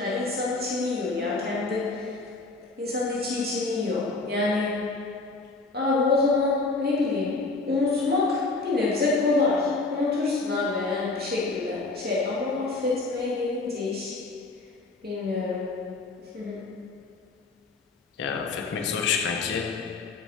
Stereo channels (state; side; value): quieter; right; 3.4 dB